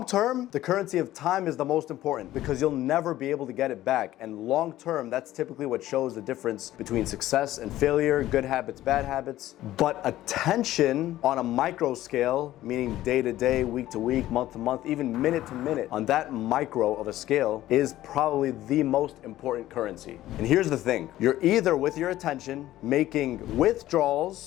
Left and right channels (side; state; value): right; quieter; 14.5 dB